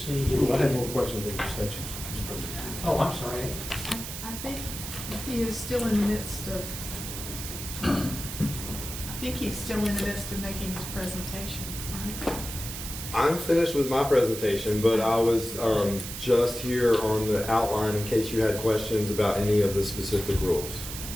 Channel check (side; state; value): right; noise; hiss, 8 dB below the sound